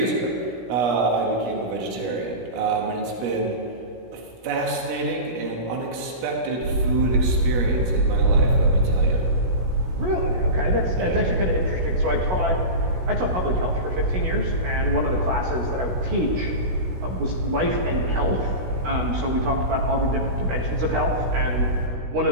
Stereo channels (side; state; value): left; late; 16 ms